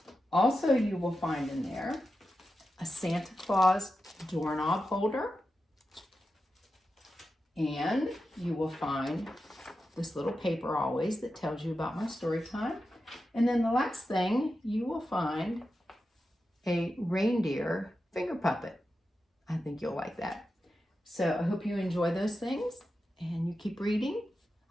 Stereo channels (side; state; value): both; normal; correlation 0.90